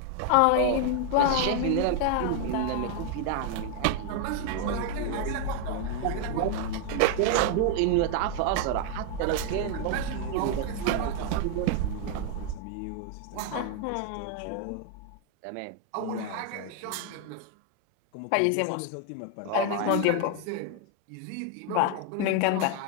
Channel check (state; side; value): different; both; correlation 0.00